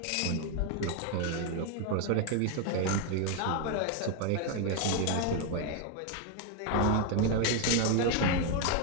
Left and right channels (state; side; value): different; both; correlation 0.01